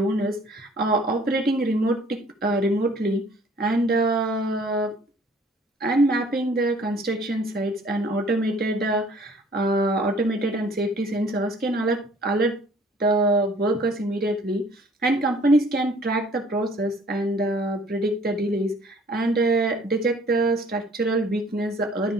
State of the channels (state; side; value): normal; both; correlation 0.55